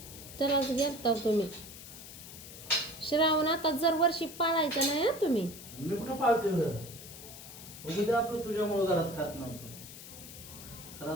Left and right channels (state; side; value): noise; left; hiss, 14 dB below the sound